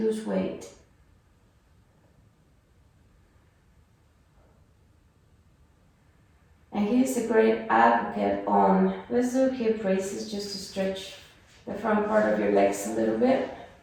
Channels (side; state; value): both; identical; correlation 1.00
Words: weight. And he's a great advocate on, let's do hip raises just to stretch the front part of your legs a little bit.